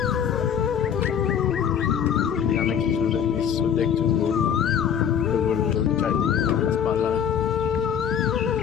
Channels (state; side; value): quieter; right; 8.3 dB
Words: গ্রামে কি সুন্দর দৃশ্য দেখছো। গরু চারিদিকে গাছপালা,